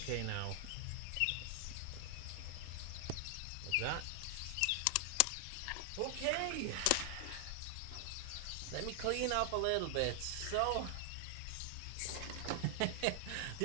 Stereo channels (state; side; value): different; both; correlation 0.00